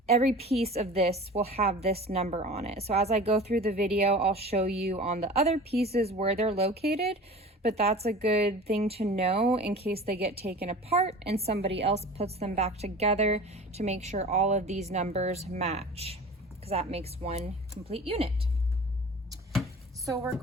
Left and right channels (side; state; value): both; normal; correlation 0.39